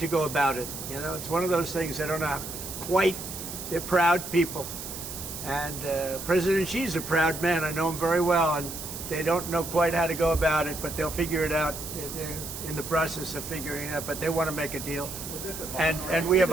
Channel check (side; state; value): right; noise; hiss, 9 dB below the sound